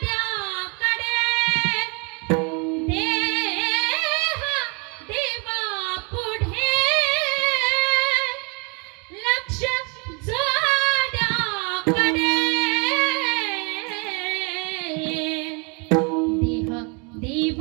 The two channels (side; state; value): left; quieter; 33.0 dB